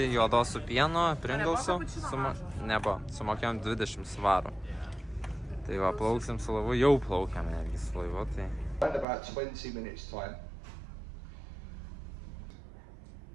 juodos su pienu, Pringlesų. Nebuvo, sumokėjom 20 svarų. Tai va, plauksim su laivu, jau plaukiam netgi su laivu, tai... About 20 minutes time.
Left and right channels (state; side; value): drops out; left; at 9.1 s